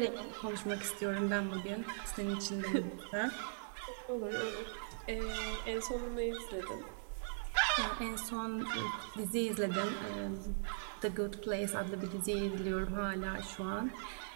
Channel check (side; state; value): left; silent; digital silence